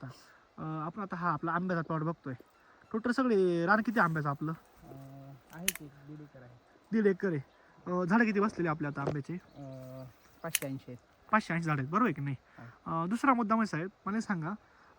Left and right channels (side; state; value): both; identical; correlation 1.00